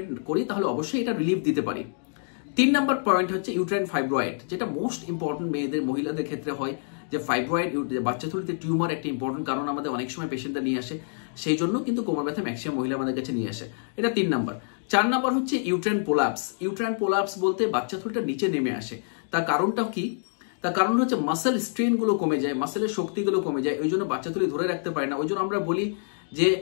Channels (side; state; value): right; silent; digital silence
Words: করি তাহলে অবশ্যই এটা রিলিফ দিতে পারি। 3 নম্বর পয়েন্ট হচ্ছে ইউট্রাইন ফাইব্রয়েড, যেটা মোস্ট ইম্পর্টেন্ট মহিলাদের ক্ষেত্রে হয়। যে ফাইব্রয়েড, বাচ্চাথলিতে টিউমার একটা ইম্পর্টেন্ট কারণ আমাদের অনেক সময় পেশেন্টরা নিয়ে আসে, সেই জন্য কিন্তু কোমর ব্যথা ম্যাক্সিমাম মহিলা আমাদের কাছে নিয়ে আসে। এটা 3 নম্বর। 4 নম্বর হচ্ছে ইউট্রাইন পোলাপস। ইউট্রাইন পোলাপস বলতে বাচ্চাথলিটা নিচে নেমে আসে। তার কারণটা কি? তার কারণ হচ্ছে মাসেল স্ট্রেন গুলো কমে যায়, মাসেলের শক্তিগুলো কমে যায়, ওই জন্য বাচ্চাথলি ধরে রাখতে পারে না। ওই জন্য আমরা বলি যে